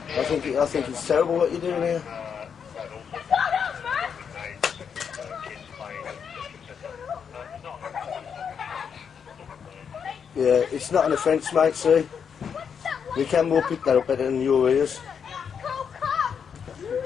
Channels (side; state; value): right; quieter; 7.1 dB